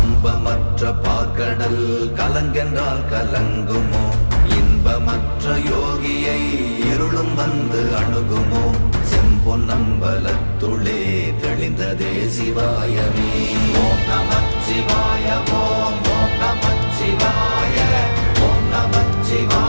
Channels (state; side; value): inverted; both; correlation -1.00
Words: பார்க்கடல் கலங்கென்றால் கலங்குமோ? இன்பமற்ற யோகியை இருளும் வந்து அணுகுமோ? செம்பொன்னம்பலத்துளே தெளிந்ததே சிவாயமே. ஓம் நமச்சிவாய ஓம் ஓம் நமச்சிவாய ஓம்